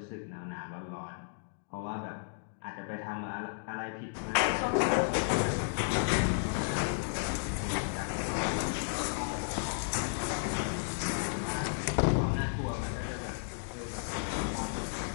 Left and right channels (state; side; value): silent; right; digital silence